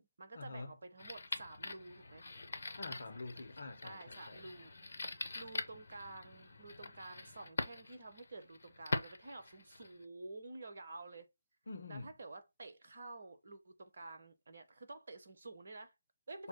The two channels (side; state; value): both; inverted; correlation -0.89